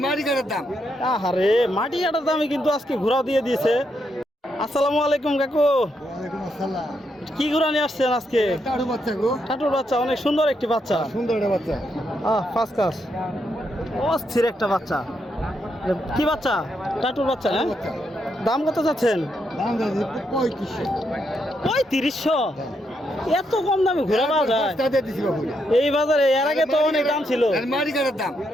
মাটি কাটার দামে কিন্তু আজকে ঘোড়া দিয়ে দিয়েছে। আসসালামু আলাইকুম কাকু। কি ঘোড়া নিয়ে আসছেন আজকে? টাটুর বাচ্চা, অনেক সুন্দর একটি বাচ্চা। ফার্স্ট ক্লাস, অস্থির একটা বাচ্চা। কি বাচ্চা? টাটুর বাচ্চা। হ্যাঁ, দাম কত চাচ্ছেন? 3500 এত কম দামে ঘোড়া পাওয়া যায় এই বাজারে? এর আগে তো অনেক দাম ছিল। আরে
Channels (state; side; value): normal; both; correlation 0.79